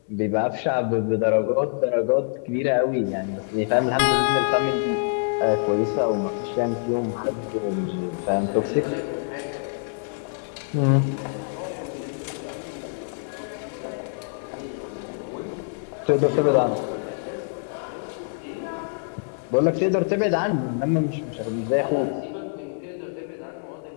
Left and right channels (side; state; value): right; silent; digital silence